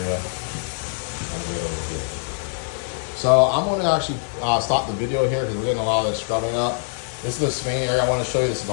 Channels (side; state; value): right; silent; digital silence